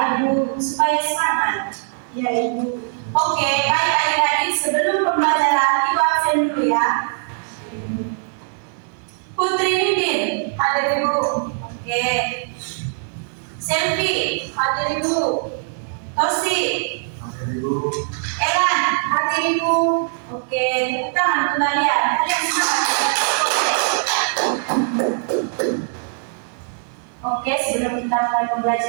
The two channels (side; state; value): left; silent; 65 dB below the other